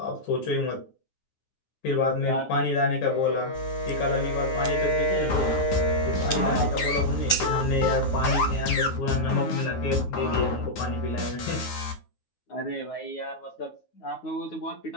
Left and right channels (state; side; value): late; right; 9.4 ms